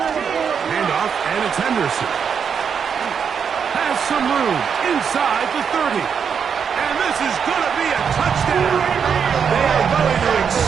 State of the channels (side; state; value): left; quieter; 6.9 dB